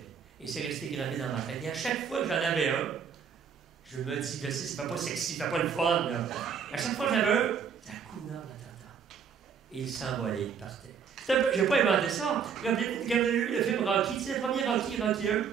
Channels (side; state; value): left; quieter; 7.0 dB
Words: Et c'est resté gravé dans ma tête. Et à chaque fois que j'en avais un, je me dis, je sais, ça fait pas sexy, ça fait pas le fun, là. À chaque fois que j'avais un, Hakuna Matata. Et il s'envolait, il partait. J'ai pas inventé ça. Quand vous avez vu le film Rocky, c'est le premier Rocky 1. Tu sais,